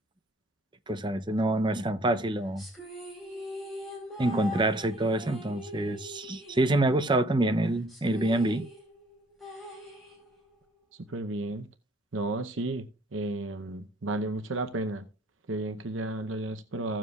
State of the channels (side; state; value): both; normal; correlation 0.58